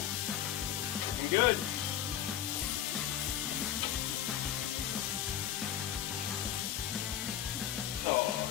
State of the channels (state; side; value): quieter; right; 10.9 dB